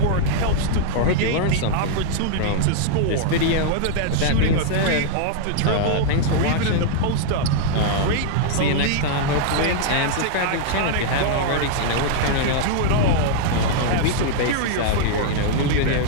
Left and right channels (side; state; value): both; different; correlation -0.01